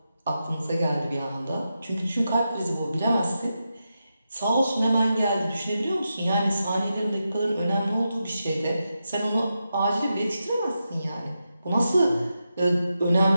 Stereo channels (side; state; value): both; inverted; correlation -0.88